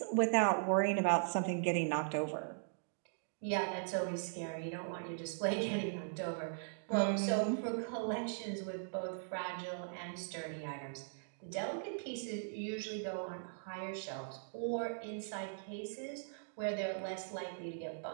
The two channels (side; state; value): left; silent; digital silence